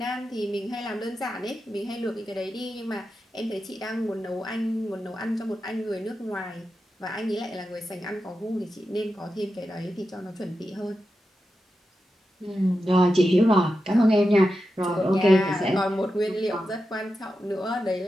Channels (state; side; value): normal; both; correlation 0.90